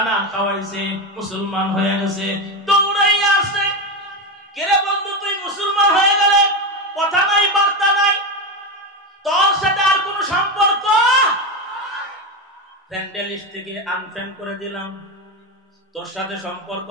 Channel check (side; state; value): both; normal; correlation 0.14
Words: খাওয়াইছে, মুসলমান হয়ে গেছে। দৌড়াইয়া আসছে, কেরে বন্ধু তুই মুসলমান হয়ে গেলে, কথা নাই বার্তা নাই, তোর সাথে আর কোনো সম্পর্ক, ফ্রেন্ড লিস্ট থেকে আনফ্রেন্ড করে দিলাম, তোর সাথে সম্পর্ক